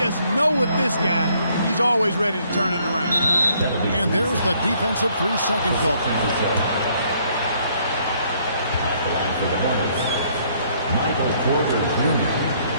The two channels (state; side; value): inverted; both; correlation -0.66